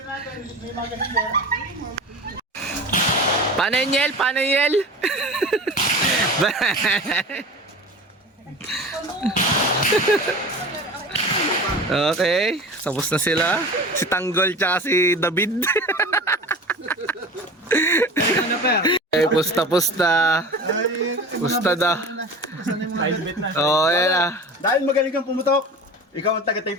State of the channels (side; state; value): both; normal; correlation 0.35